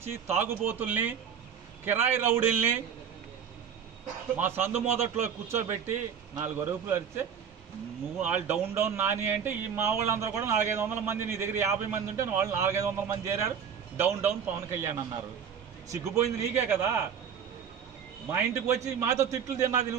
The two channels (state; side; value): quieter; left; 7.6 dB